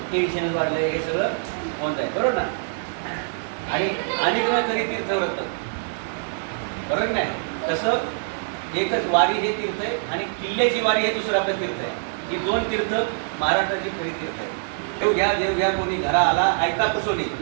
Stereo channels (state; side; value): silent; left; 62 dB below the other